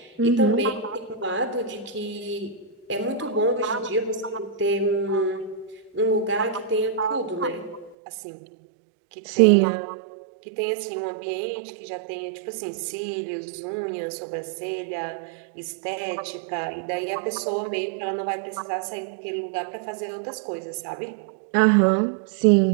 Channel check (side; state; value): left; drops out; at 8.0 s